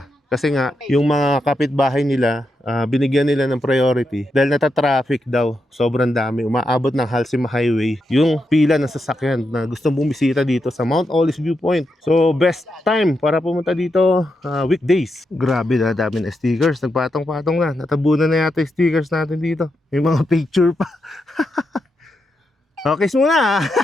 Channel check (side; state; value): both; normal; correlation 0.85